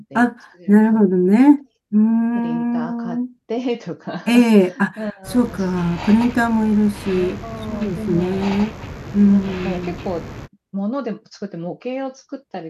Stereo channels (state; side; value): identical; both; correlation 1.00